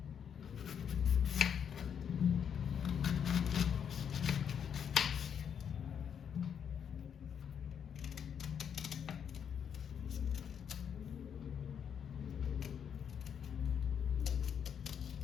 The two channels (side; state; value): right; quieter; 7.9 dB